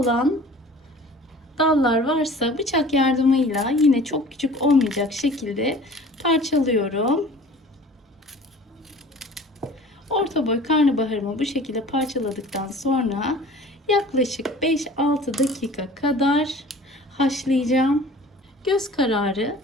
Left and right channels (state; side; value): normal; both; correlation 0.46